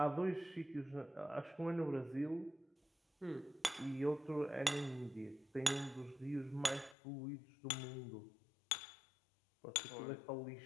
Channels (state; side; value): drops out; right; at 7.0 s